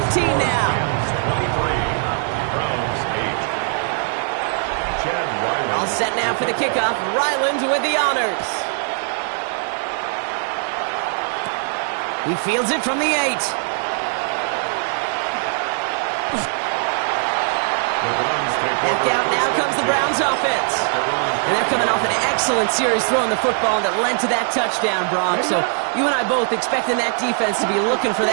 now. 23. Browns 8. Chad Ryland. All set now for the kickoff. Ryland with the honors. He fields it from the 8. Back out, now comes the Browns offense. And they're coming off an excellent series throwing the football that led to that touchdown, Brock. So you and I both expecting that defense to be looking for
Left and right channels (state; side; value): silent; left; 60 dB below the other